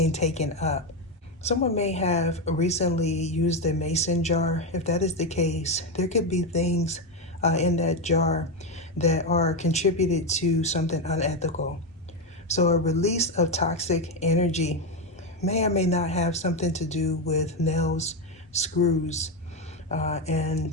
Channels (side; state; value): both; normal; correlation 0.09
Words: taken up. Someone may have recently used a mason jar. If that is the case, there could be things in that jar that are contributed to something unethical. So a release of toxic energy may or may not have something to do with nails, screws,